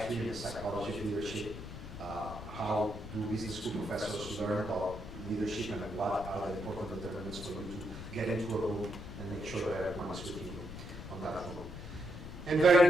and the psychology of leadership, how do business school professors learn about leadership and what are the important determinants for you to get into a room and make sure that everyone is with you on that room. And very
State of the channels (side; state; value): left; noise; rumble, 10 dB below the sound